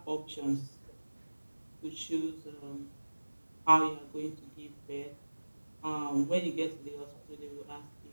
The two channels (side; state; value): both; inverted; correlation -1.00